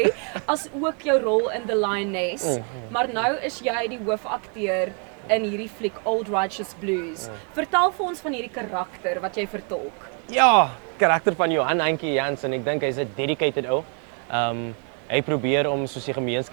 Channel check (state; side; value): quieter; left; 39.8 dB